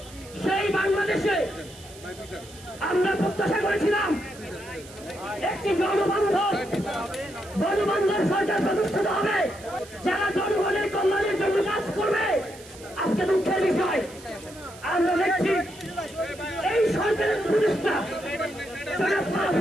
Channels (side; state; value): right; noise; hiss, 19 dB below the sound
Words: সেই বাংলাদেশে আমরা প্রত্যাশা করেছিলাম একটি জনবান্ধব সরকার প্রতিষ্ঠিত হবে, যারা জনগণের কল্যাণের জন্য কাজ করবে। আজকে দুঃখের বিষয়, আমরা দেখছি এই সরকারের প্রতিষ্ঠা